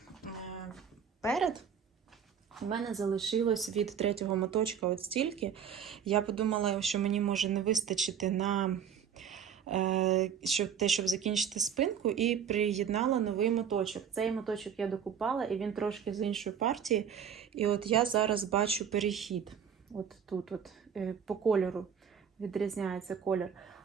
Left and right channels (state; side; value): quieter; left; 7.9 dB